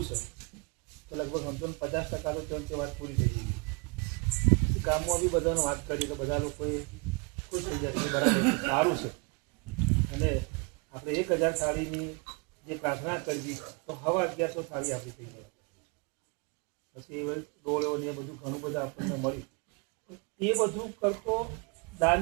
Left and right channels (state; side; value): quieter; left; 32.4 dB